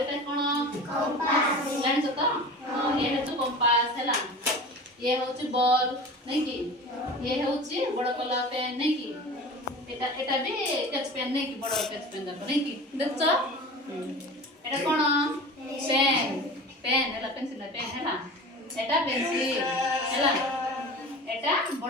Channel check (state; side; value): normal; both; correlation 0.35